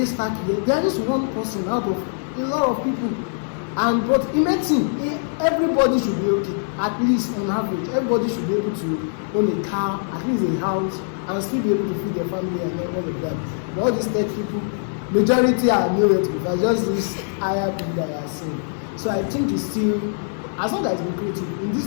stack here. They are just one person out of a lot of people. And but in medicine, everybody should be okay. At least on average, everybody should be able to own a car, at least a house, and still be able to feed their family and all of that. But all these tech people, majority are nowhere to be. Just this higher people that are saying. So I think it's still, as long as it's lucrative in this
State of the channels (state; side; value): silent; right; digital silence